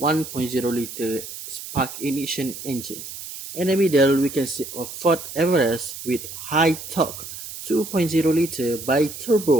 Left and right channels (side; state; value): right; noise; hiss, 11 dB below the sound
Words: spark ignition engine. In the middle, we can see a Ford Everest with high torque 2.0-liter